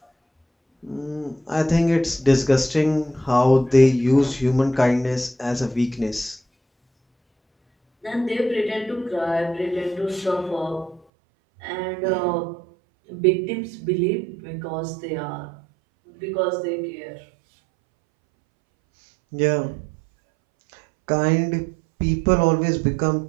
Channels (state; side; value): drops out; left; at 11.0 s